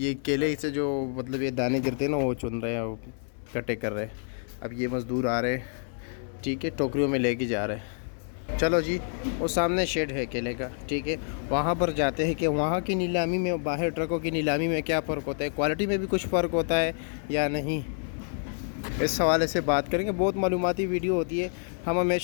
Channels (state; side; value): silent; right; 59 dB below the other